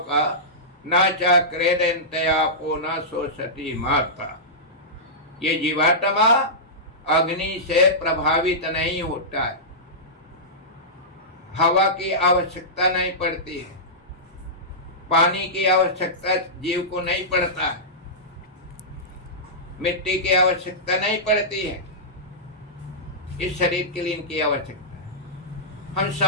का, न चा क्रेदंतयापो न सोचती माता। ये जीवात्मा अग्नि से प्रभावित नहीं होता है। हवा की आवश्यकता नहीं पड़ती है, पानी की आवश्यकता जीव को नहीं पड़ता है, मिट्टी की आवश्यकता नहीं पड़ती है। इस शरीर के लिए इनकी आवश्यकता है। हम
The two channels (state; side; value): normal; both; correlation -0.15